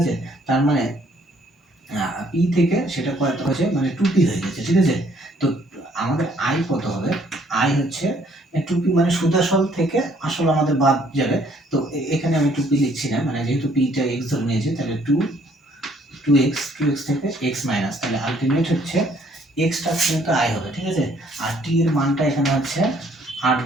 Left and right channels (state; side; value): normal; both; correlation 0.64